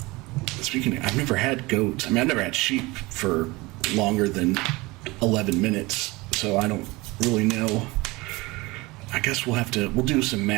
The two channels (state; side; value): quieter; left; 22.7 dB